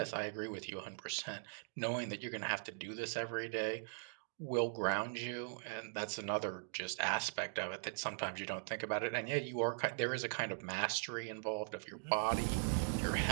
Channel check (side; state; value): left; silent; digital silence